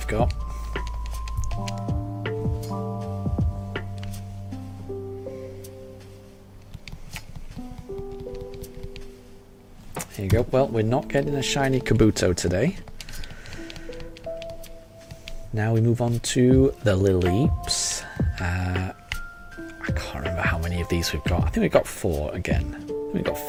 got. Here you go. Well, we're not getting a shiny Kabuto today. Now we move on to the Lileeps. I can't remember how many of these we've got. I think we've got 4 again. I think we've got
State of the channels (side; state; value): both; identical; correlation 1.00